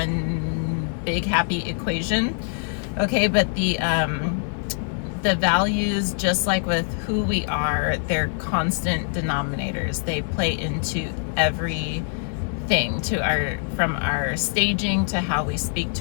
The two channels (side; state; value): right; silent; digital silence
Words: big happy equation. Okay, but the values, just like with who we are, they're constant denominators. They play into everything, from our staging to how we speak